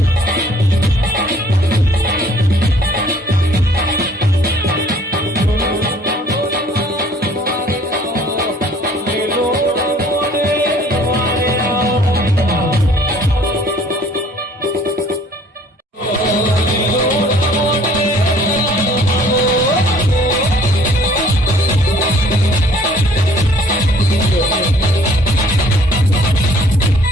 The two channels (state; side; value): normal; both; correlation 0.56